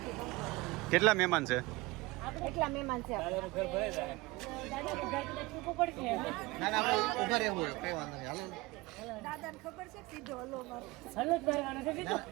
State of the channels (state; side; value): quieter; left; 21.9 dB